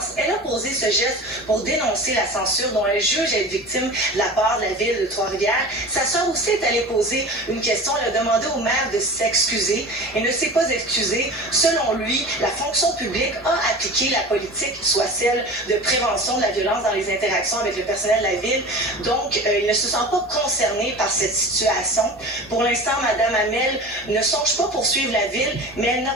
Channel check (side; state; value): both; normal; correlation 0.34